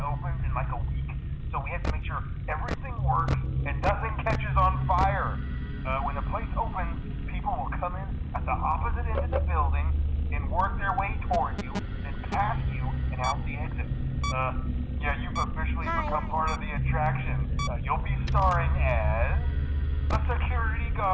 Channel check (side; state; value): both; identical; correlation 1.00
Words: in like a week, so we have to make sure everything works and nothing catches on fire. When the place opens, people will come in at the opposite end of the building and work their way toward you, then past you, and out the exit. Yeah, you've officially become part of the attraction. You'll be starring as a security